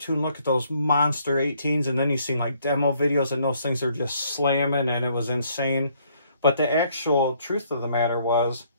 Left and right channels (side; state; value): both; inverted; correlation -0.66